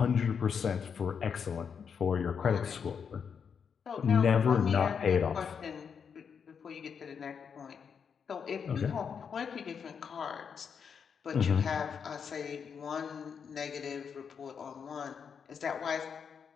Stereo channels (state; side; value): quieter; right; 6.7 dB